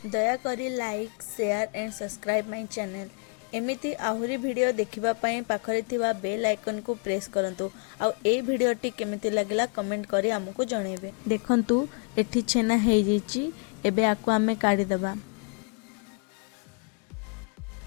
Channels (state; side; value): quieter; right; 36.9 dB